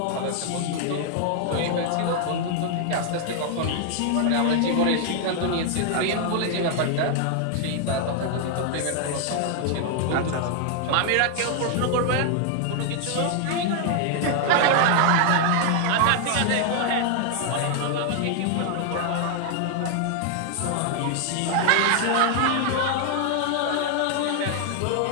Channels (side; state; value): both; different; correlation 0.00